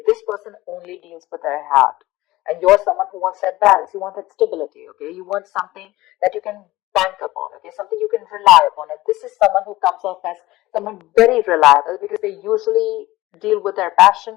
This person only deals with their heart. And you're someone who wants that balance. You want that stability, okay? You want something that you can bank upon, okay? Something you can rely upon. And this is someone who comes off as someone very reliable, because they usually deal with their passion.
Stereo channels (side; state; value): right; quieter; 18.0 dB